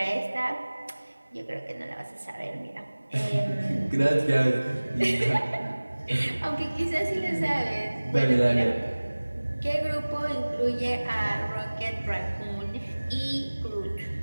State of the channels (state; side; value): inverted; both; correlation -1.00